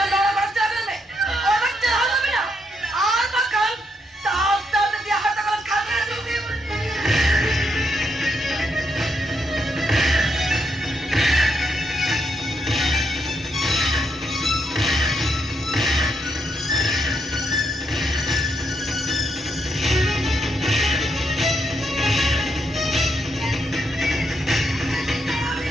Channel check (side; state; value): both; normal; correlation 0.79